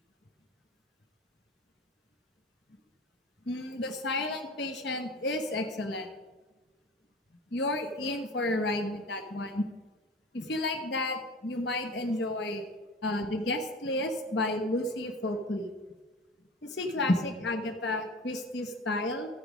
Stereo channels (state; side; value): normal; both; correlation 0.38